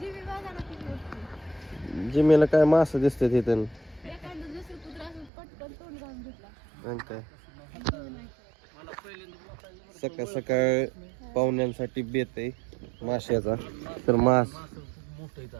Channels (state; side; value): drops out; left; at 5.3 s